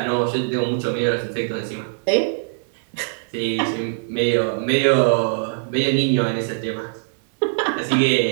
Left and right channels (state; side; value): silent; left; digital silence